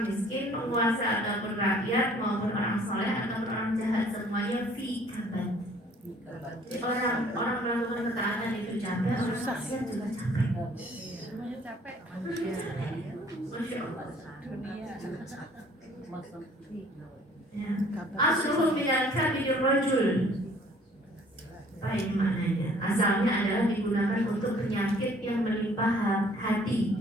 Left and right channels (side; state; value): both; normal; correlation 0.56